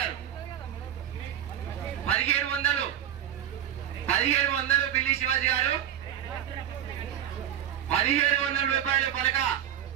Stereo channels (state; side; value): quieter; left; 10.5 dB